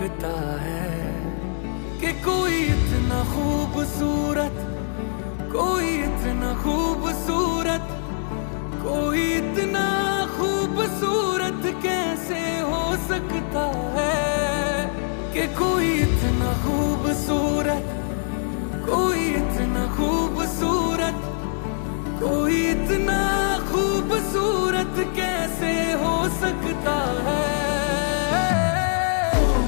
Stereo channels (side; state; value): right; silent; digital silence